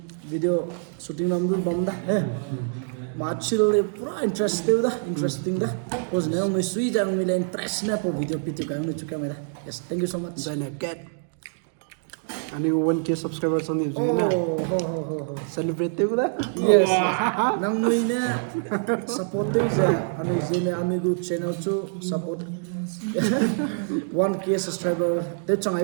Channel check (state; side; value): silent; left; digital silence